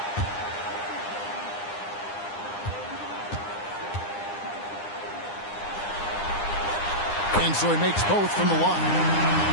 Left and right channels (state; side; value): late; right; 9.8 ms